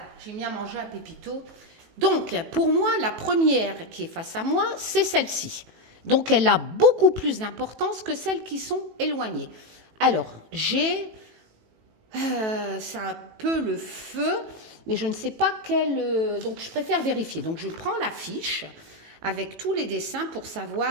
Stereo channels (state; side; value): late; left; 18 ms